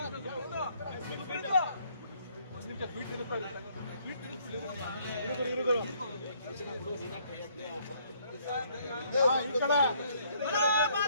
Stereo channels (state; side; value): inverted; both; correlation -0.65